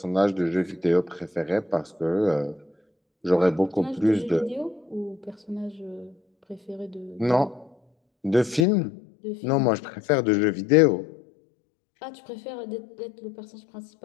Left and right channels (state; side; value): drops out; right; at 8.7 s